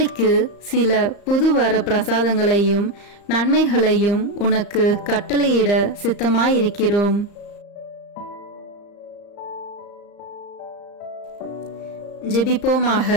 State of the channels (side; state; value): right; late; 34 ms